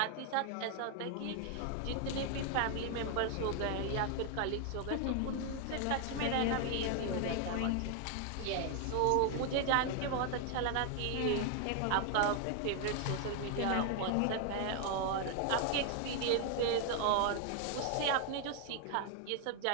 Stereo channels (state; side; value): different; both; correlation 0.00